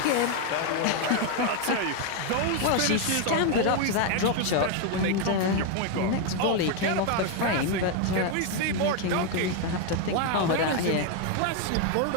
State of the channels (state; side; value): different; both; correlation 0.01